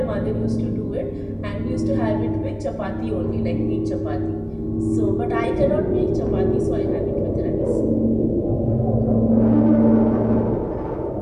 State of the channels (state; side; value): identical; both; correlation 1.00